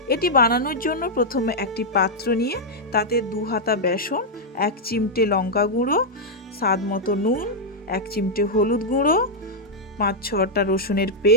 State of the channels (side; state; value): both; normal; correlation -0.04